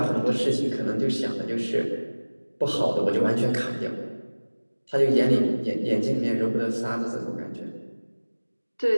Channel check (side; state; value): both; inverted; correlation -1.00